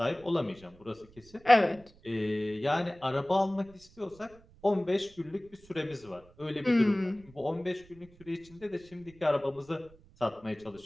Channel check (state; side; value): noise; right; rumble, 25 dB below the sound